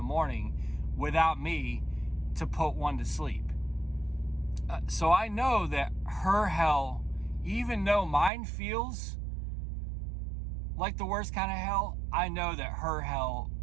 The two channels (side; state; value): left; drops out; at 8.3 s